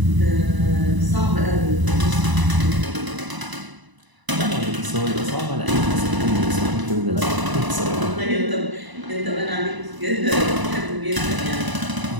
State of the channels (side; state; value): left; late; 1.0 ms